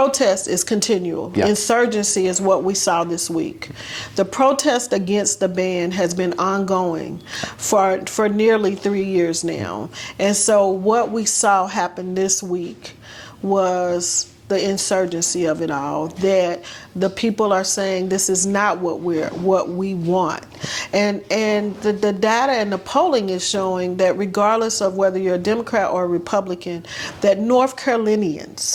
is continual. Yeah. Insurgency is what we saw this week. The protest against the ban has been ongoing for nearly 3 years now. And so what we saw happen this week was the insurgency of it all, that the people are saying this is not what we want. And the data and the polling is showing that regardless of whether you're a Democrat or a Republican, that North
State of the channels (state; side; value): identical; both; correlation 1.00